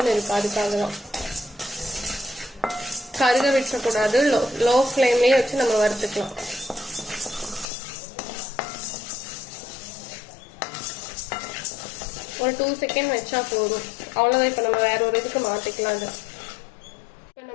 இருக்கு. அதுக்காக தான் கருக விட்டக்கூடாது. லோ ஃப்ளேம்லேயே வச்சு நம்ம வறுத்துக்கலாம். ஒரு 2 செகண்ட் வச்சா போதும், அவ்வளோதான். இப்போ நம்ம வேற ஒரு இதுக்கு மாற்றிக்கலாம். அது இப்போ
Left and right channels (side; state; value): right; drops out; at 7.7 s